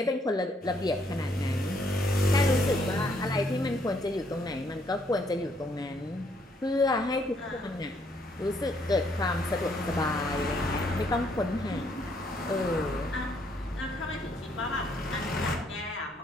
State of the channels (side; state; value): both; normal; correlation 0.70